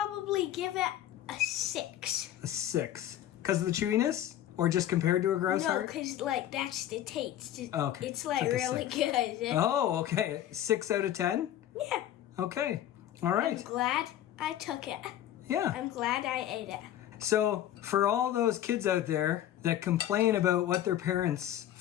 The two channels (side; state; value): right; quieter; 12.0 dB